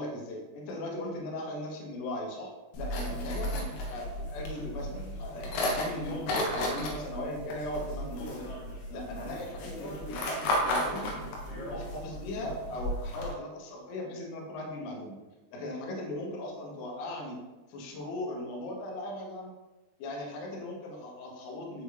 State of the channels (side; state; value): right; late; 20 ms